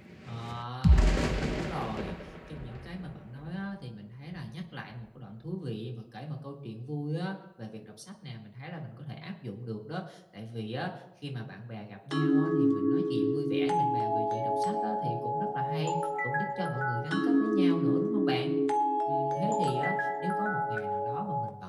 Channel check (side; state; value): both; identical; correlation 1.00